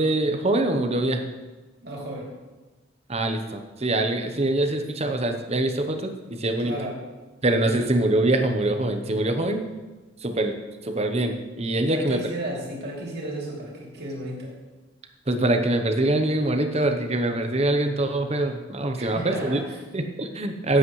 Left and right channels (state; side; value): normal; both; correlation 0.54